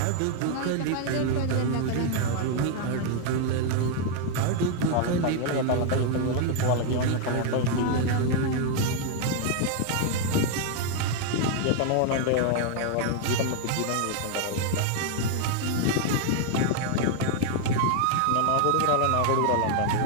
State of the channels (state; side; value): different; both; correlation 0.00